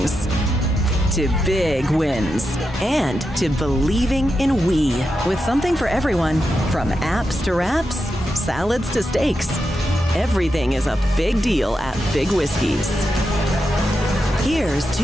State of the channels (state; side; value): normal; both; correlation 0.87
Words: to big wins, and to believing in we, with something for everyone, from apps to wraps, salads to steaks. Everything is a big deal at Big Whiskey's. Here's